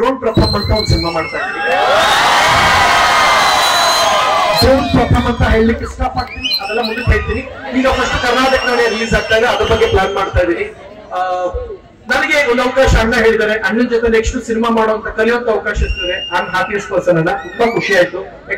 ಪ್ರಥಮ್ ಅಂತ ಒಂದು ಸಿನಿಮಾ ಮಾಡ್ತಾ ಇದ್ದೀನಿ. ಡ್ರೋನ್ ಪ್ರಥಮ್ ಅಂತ ಹೇಳಲಿಕ್ಕೆ ಇಷ್ಟಪಡ್ತೀನಿ, ಅದೆಲ್ಲ ಮುಂದಕ್ಕೆ ಹೇಳ್ತೀನಿ. ಈಗ ಫಸ್ಟ್ ಕರ್ನಾಟಕದಲ್ಲಿ ರಿಲೀಸ್ ಆಗ್ತಾ ಇದೆ, ಅದ್ರ ಬಗ್ಗೆ ಪ್ಲಾನ್ ಮಾಡ್ತಾ ಇದ್ದೀನಿ. ನನಗೆ ಒಂದು ಅವಕಾಶ ಅಣ್ಣ ಹೇಳಿದ್ದಾರೆ, ಅಣ್ಣನ ಜೊತೆ ನೆಕ್ಸ್ಟ್ ಸಿನಿಮಾ ಮಾಡುವಂತ ಕಲಿಯುವಂತ ಅವಕಾಶ ಇರ್ತದೆ. ನಾನು ಹ್ಯಾಪಿಯೆಸ್ಟ್ ಪರ್ಸನ್ ಅನ್ನ, ತುಂಬಾ ಖುಷಿ ಆಯ್ತು.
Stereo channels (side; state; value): both; identical; correlation 1.00